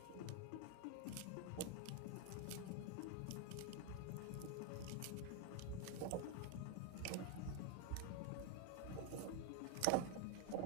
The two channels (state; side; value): different; both; correlation 0.00